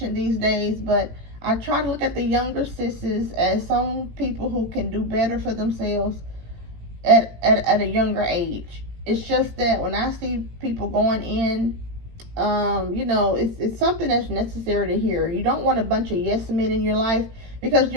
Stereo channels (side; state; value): left; late; 18 ms